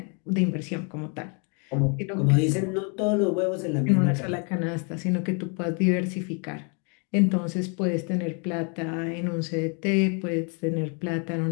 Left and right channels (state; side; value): quieter; right; 36.8 dB